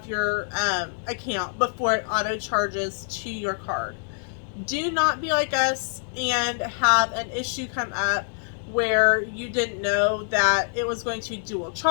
your account before it auto charges to your card. Do not be like us and have an issue come up where you didn't know that it was going to dual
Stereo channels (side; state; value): right; silent; digital silence